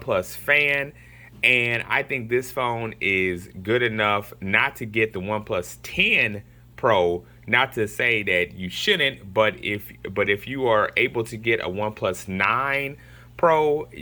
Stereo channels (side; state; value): both; identical; correlation 1.00